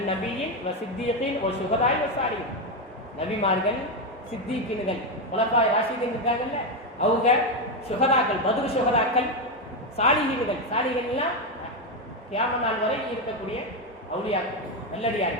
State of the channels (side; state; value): both; normal; correlation 0.08